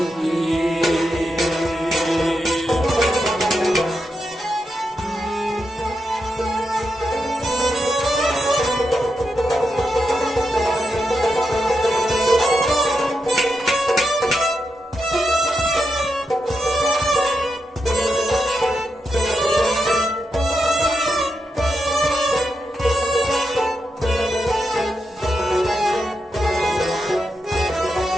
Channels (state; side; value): normal; both; correlation 0.86